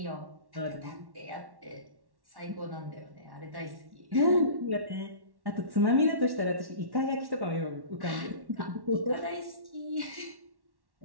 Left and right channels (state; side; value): late; left; 1.1 ms